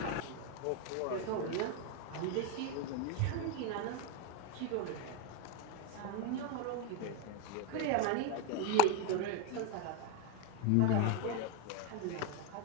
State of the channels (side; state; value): both; different; correlation 0.01